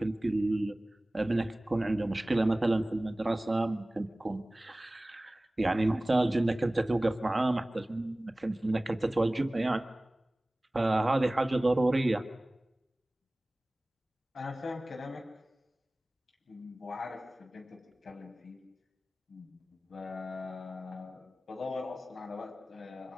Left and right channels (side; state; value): both; normal; correlation 0.98